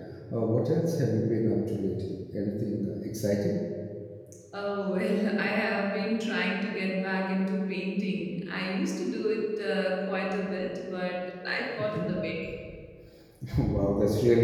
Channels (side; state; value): both; identical; correlation 1.00